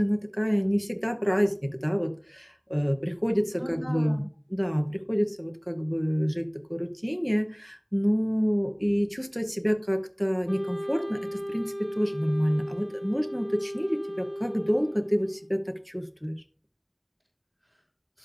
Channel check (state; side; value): identical; both; correlation 1.00